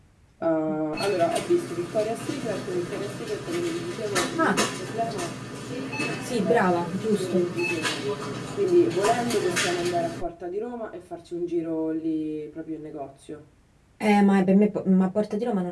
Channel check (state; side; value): identical; both; correlation 1.00